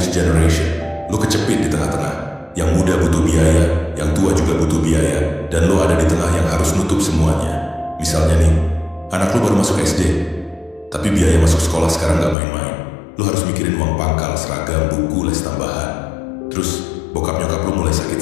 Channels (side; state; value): right; drops out; at 12.4 s